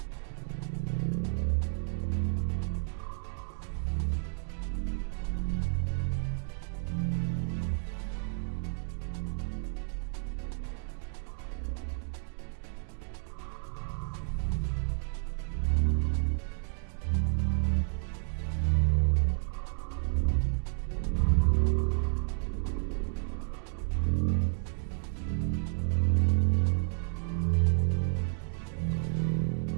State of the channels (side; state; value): left; silent; digital silence